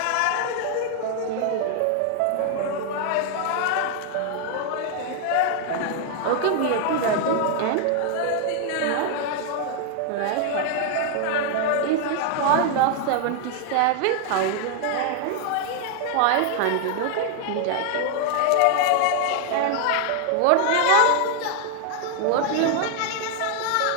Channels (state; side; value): different; both; correlation 0.00